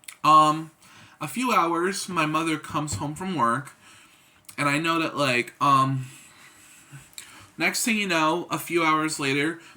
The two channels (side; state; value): both; identical; correlation 1.00